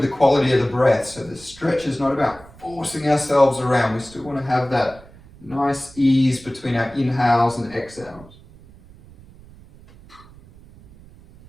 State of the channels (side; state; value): right; noise; rumble, 22 dB below the sound